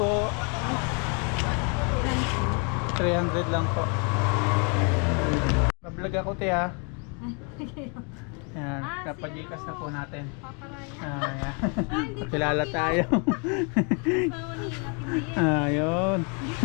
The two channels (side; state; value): right; quieter; 36.1 dB